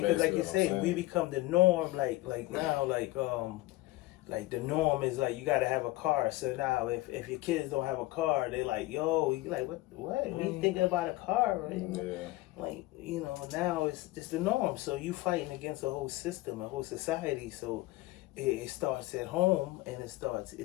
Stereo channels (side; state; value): right; quieter; 19.1 dB